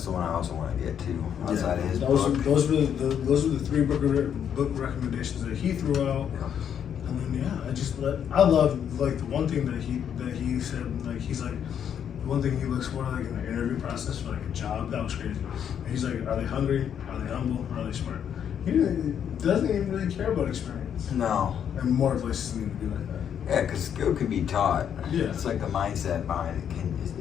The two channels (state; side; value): quieter; right; 8.7 dB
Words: the one I also want to get to. Outside of his those book. those were the three book recommendations that he threw out. Yeah. And then I love like the one thing that he said, like he's like the one thing he looks for like in the interview process for like a job. That was crazy. And he's like, are they hungry? Are they humble? Are they smart? He doesn't even really care about experience. No. And more places need to be like that. Yeah, because skill can be taught. Yeah. It's like the mindset behind